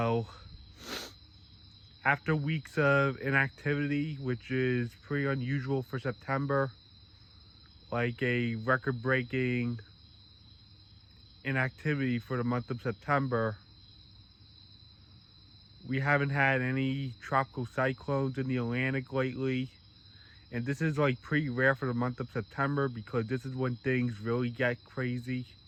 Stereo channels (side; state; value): both; identical; correlation 1.00